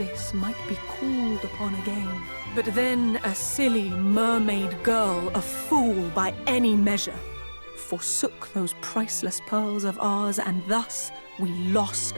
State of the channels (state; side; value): inverted; both; correlation -1.00